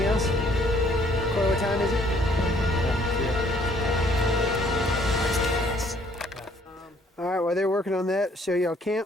else? Corey, what time is it? Alright, while they're working on that, show y'all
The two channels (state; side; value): normal; both; correlation 0.63